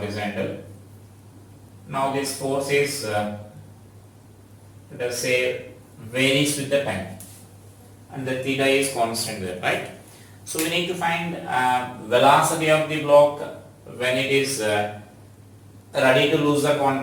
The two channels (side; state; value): both; identical; correlation 1.00